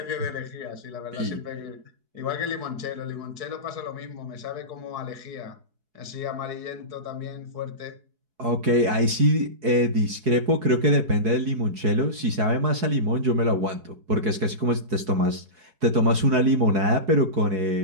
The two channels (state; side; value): late; left; 4.7 ms